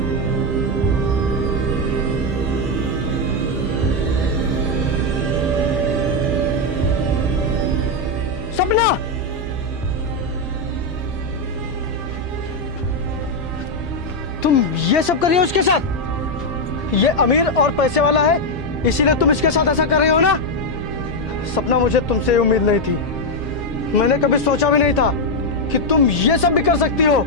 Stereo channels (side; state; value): both; normal; correlation 0.03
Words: सपना, तुम ये सब कर रही हो उसके साथ? ये अमीर और पैसे वाला है, इसीलिए तुम इसके साथ ऐसा कर रही हो ना? सपना, मुझे तुमसे उम्मीद नहीं थी। मैंने कभी सोचा भी नहीं था कि तुम ये सब भी कर सकती हो।